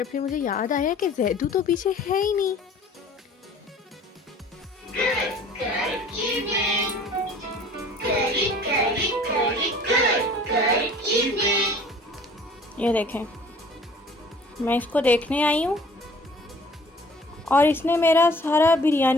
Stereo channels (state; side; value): normal; both; correlation 0.51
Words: फिर मुझे याद आया कि जैदू तो पीछे है ही नहीं। ये देखें, मैं इसको देखने आई हूँ और इसने मेरा सारा